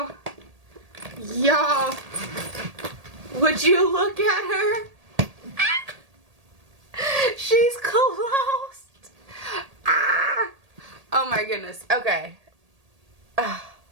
Y'all, would you look at her? She's closed. Ah. Oh my goodness. Okay.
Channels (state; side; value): late; left; 1.8 ms